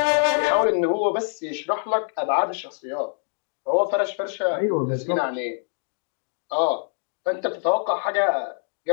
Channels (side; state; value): right; silent; digital silence